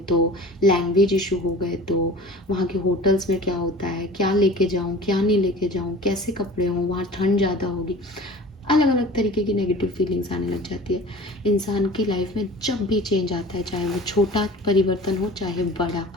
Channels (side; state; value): both; normal; correlation 0.42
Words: लैंग्वेज इशू हो गए तो, वहाँ के होटल्स में क्या होता है, क्या लेके जाऊँ क्या नहीं लेके जाऊँ, कैसे कपड़े हों, वहाँ ठंड ज़्यादा होगी, अलग अलग तरीके की नेगेटिव फीलिंग्स आने लग जाती है। इंसान की लाइफ में जब भी चेंज आता है, चाहे वो छोटा परिवर्तन हो चाहे बड़ा,